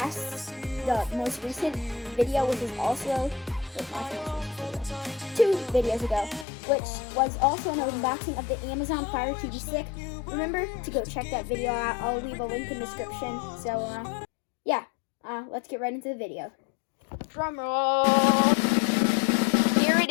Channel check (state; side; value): drops out; right; at 6.5 s